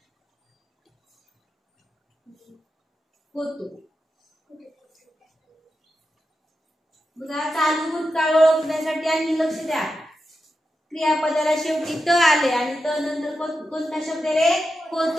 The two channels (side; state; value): both; normal; correlation 0.89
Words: बघा, चालू भूतकाळ ओळखण्यासाठी आणि लक्ष द्या. क्रियापदाला शेवटी त आले आणि त नंतर कोणता शब्द रे?